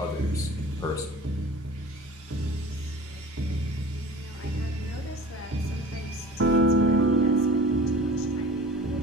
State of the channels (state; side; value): normal; both; correlation 0.41